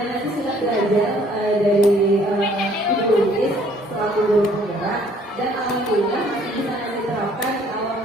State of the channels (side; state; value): both; normal; correlation 0.60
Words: nanti sudah belajar dari Ibu Luis selaku guru penggerak dan alhamdulillah masih bisa diterapkan kalau